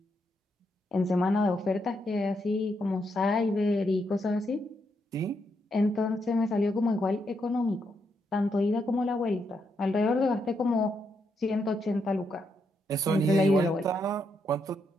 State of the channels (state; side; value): normal; both; correlation 0.80